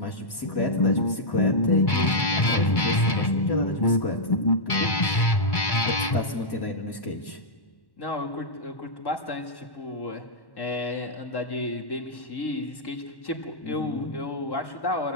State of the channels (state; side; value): late; right; 1.1 ms